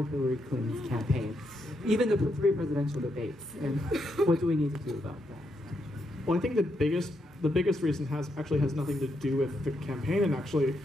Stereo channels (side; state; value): both; normal; correlation 0.80